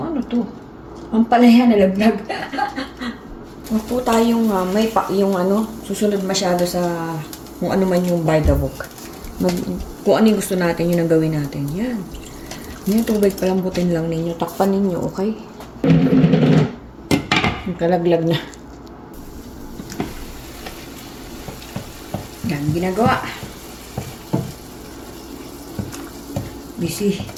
ang palaya na laglag. Huwag po tayong susunod masyado sa kung ano man yung by the book. Kung ano yung gusto natin, yun ang gawin natin. Yan. Yung tubig palambutin lang ninyo. Takpan ninyo, okay? Kalaglag na. Yan, ginagawa. Busy.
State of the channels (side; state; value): both; identical; correlation 1.00